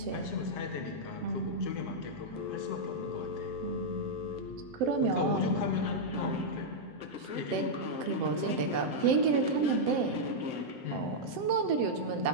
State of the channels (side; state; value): left; late; 7.7 ms